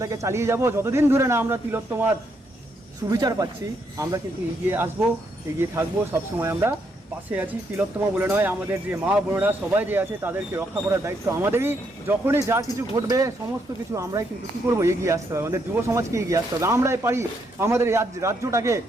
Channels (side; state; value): both; normal; correlation 0.76